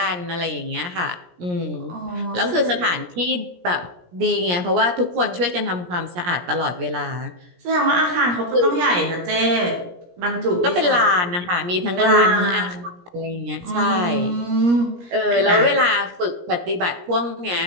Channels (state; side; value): late; left; 17 ms